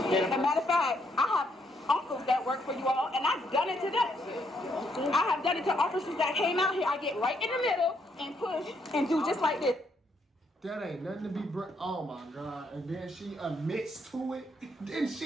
As a matter of fact, I have uncles that work for you all, and I've done it to them. I have done it to officers that came out here. I get right in the middle and push and do just like this. That ain't nothing to be oh my God. And then she admits to it. Then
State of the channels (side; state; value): both; normal; correlation 0.74